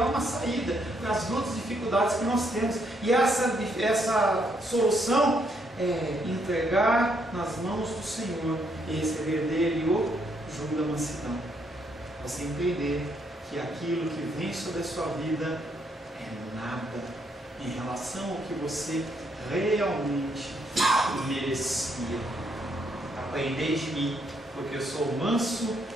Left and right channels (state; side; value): normal; both; correlation 0.74